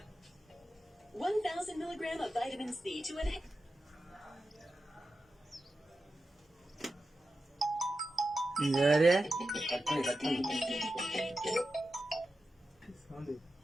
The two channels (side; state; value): both; normal; correlation 0.91